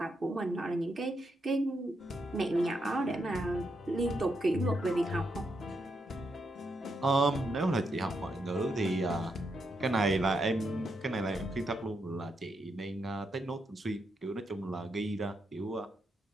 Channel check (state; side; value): normal; both; correlation 0.81